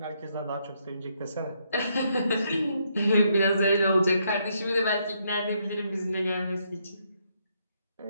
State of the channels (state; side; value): inverted; both; correlation -0.75